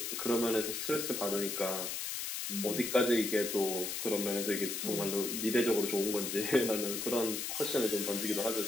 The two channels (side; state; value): left; noise; hiss, 3 dB below the sound